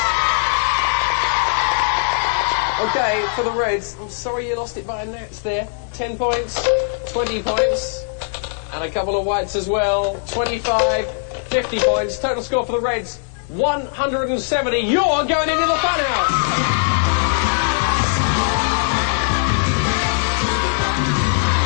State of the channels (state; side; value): silent; right; digital silence